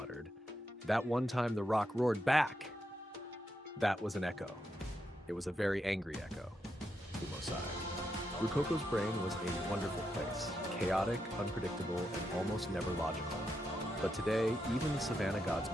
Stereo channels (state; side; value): normal; both; correlation 0.83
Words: "That one time the rock roared back!" That was an echo. It was a very angry echo. Fumo sighed. Rukoko's brain was a wonderful place, chaotic, unpredictable, and almost never logical. But today, even the Savanna gods